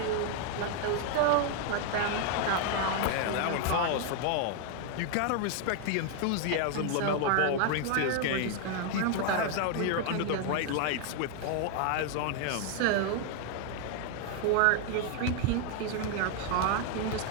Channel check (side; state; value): both; different; correlation 0.00